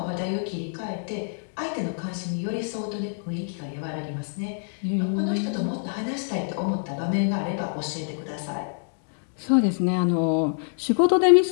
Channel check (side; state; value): right; silent; digital silence